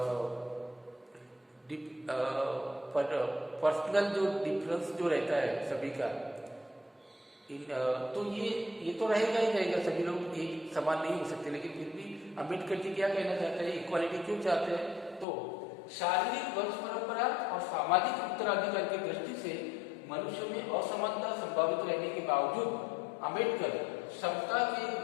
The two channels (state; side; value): drops out; right; at 15.2 s